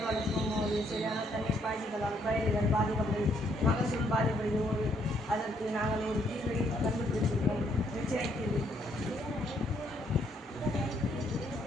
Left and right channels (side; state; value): both; normal; correlation 0.70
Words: வளர்க்கும் போது சரியான தண்ணீர் பாய்ச்சுதலால் பயிர்கள் பாதிக்கப்படும், மகசூல் பாதிப்படுகிறது. அதற்கு நாங்கள் ஒரு தீர்வை கண்டுபிடிச்சிருக்கோம். நிச்சய தீர்வு.